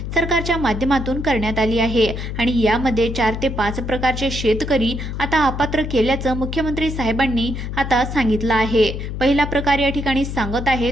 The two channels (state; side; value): noise; left; hum, 5 dB below the sound